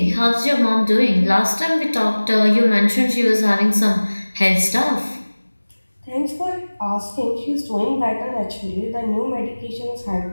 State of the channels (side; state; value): both; inverted; correlation -1.00